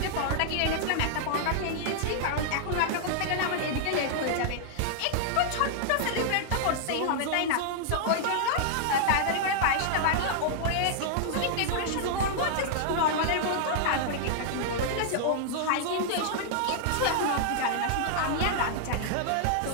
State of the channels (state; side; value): different; both; correlation -0.01